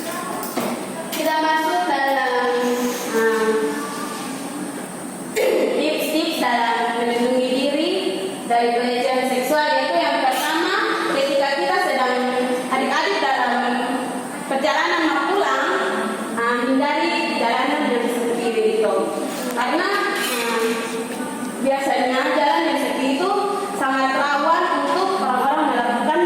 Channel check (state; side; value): identical; both; correlation 1.00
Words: Kita masuk dalam tips-tips dalam melindungi diri dari pelecehan seksual, yaitu yang pertama, ketika kita sedang adik-adik dalam perjalanan mau pulang, hindari jalanan yang sepi itu, karena biasanya jalan yang sepi itu sangat rawan untuk orang-orang melakukan